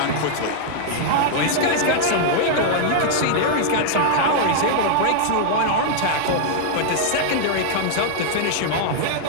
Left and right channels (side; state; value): both; different; correlation -0.01